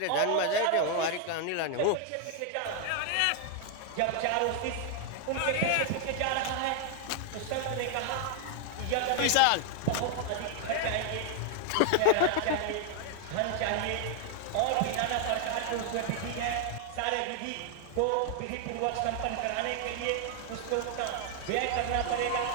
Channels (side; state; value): both; different; correlation 0.00